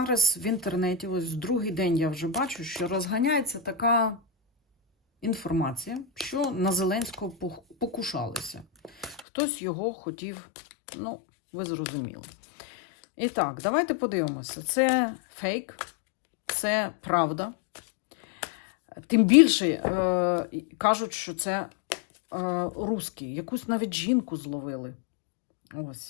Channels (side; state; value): right; drops out; at 9.2 s